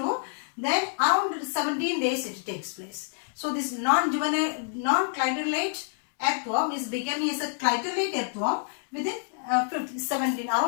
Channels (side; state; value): right; silent; 60 dB below the other